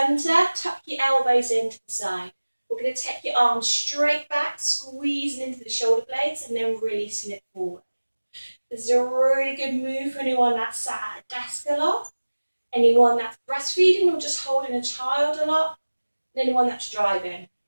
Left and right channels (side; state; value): both; inverted; correlation -1.00